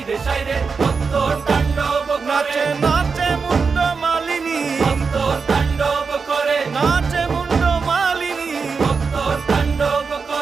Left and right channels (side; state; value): left; quieter; 5.1 dB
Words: সাইরে, মত্ত তাণ্ডব করে। নাচে মুন্ড মালিনী, মত্ত তাণ্ডব করে, নাচে মুন্ড মালিনী, মত্ত তাণ্ডব